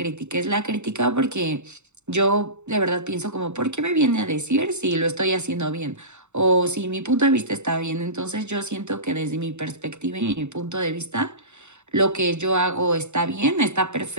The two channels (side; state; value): left; late; 0.83 ms